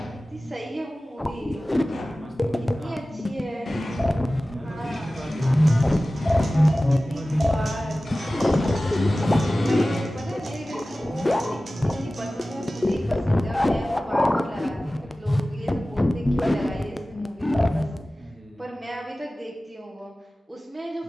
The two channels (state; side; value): normal; both; correlation 0.97